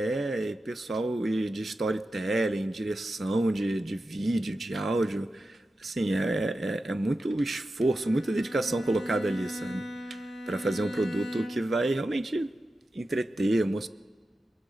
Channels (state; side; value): normal; both; correlation 0.92